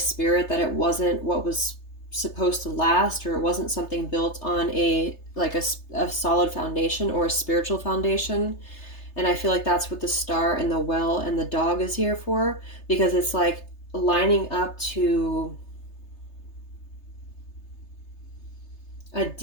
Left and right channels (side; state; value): right; late; 3.3 ms